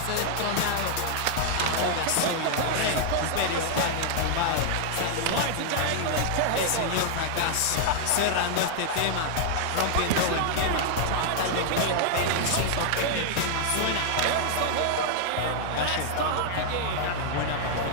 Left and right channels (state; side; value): different; both; correlation -0.01